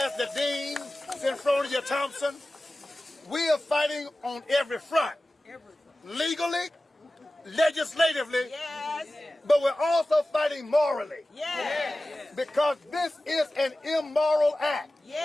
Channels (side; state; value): both; normal; correlation 0.96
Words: the Dean, Synfronia Thompson. We are fighting on every front, legally, legislatively, but we're also fighting morally, because this is an immoral act.